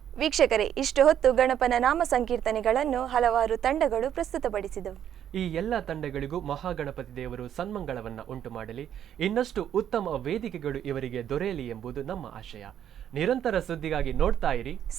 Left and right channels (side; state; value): left; quieter; 9.9 dB